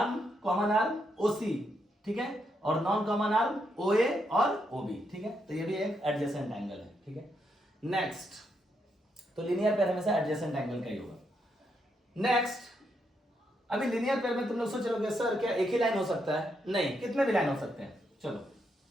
कॉमन आर्म ओ सी, ठीक है, और नॉन कॉमन आर्म ओ ए और ओ बी, ठीक है। तो ये भी एक एडजेसेंट एंगल है, ठीक है। नेक्स्ट, तो लीनियर पेयर हमेशा एडजेसेंट एंगल का ही होगा। नेक्स्ट, अभी लीनियर पेयर में तुम लोग सोच रहे सर क्या एक ही लाइन हो सकता है, नहीं, कितने भी लाइन हो सकते हैं। चलो,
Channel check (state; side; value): normal; both; correlation 0.79